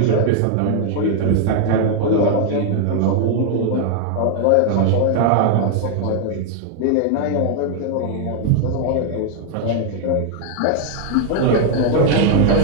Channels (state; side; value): different; both; correlation 0.00